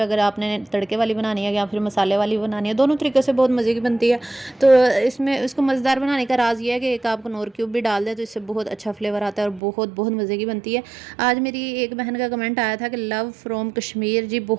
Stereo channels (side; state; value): left; drops out; at 9.6 s